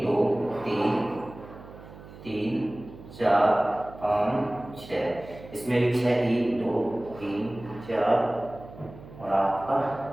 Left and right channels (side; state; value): right; noise; hum, 17 dB below the sound